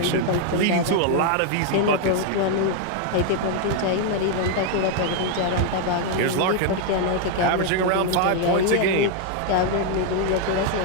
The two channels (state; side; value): different; both; correlation 0.00